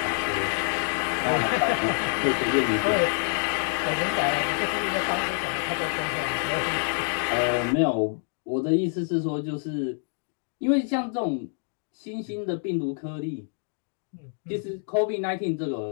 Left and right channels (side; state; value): right; silent; 60 dB below the other